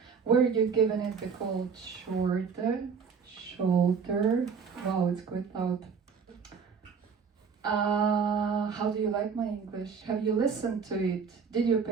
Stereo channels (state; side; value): quieter; left; 6.0 dB